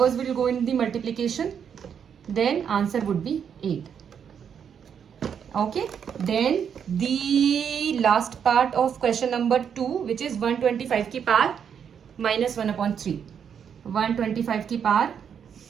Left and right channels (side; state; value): left; quieter; 7.7 dB